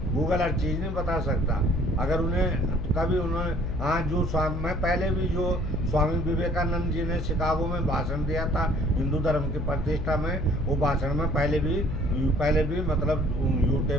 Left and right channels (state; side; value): noise; left; hum, 5 dB below the sound